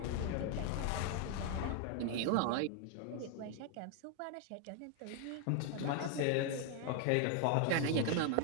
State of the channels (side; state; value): both; different; correlation 0.00